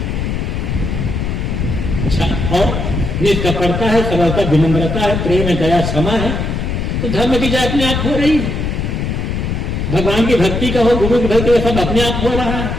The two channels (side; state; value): left; noise; rumble, 2 dB below the sound